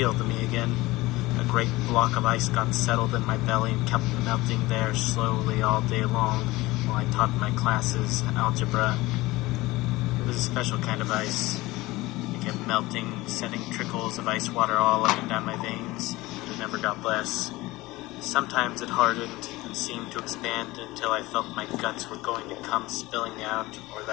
to me again. A great block of ice got settled in my belly and kept melting there slowly all day long while I taught my classes algebra. It was a special kind of ice. It kept melting, setting trickles of ice water all up and down my veins, but it never got less. Sometimes it hardened and seemed to expand until I felt my guts were going to come spilling out, or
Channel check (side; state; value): right; quieter; 19.9 dB